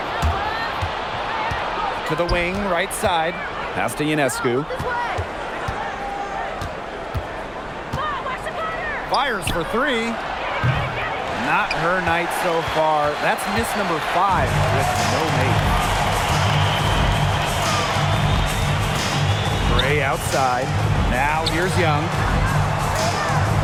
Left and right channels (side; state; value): both; identical; correlation 1.00